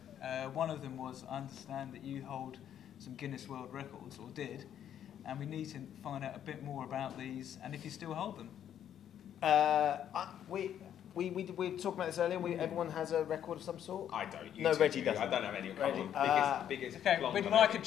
One of them was, I understand that you hold some Guinness World Records, or did, and we need to find out a bit more about these, and if you still hold them. We were talking about this earlier. Everyone has a record of some sort. I don't. No, Reggie doesn't. I don't have any. Biggest. Okay, we'd like a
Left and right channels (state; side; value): quieter; right; 9.9 dB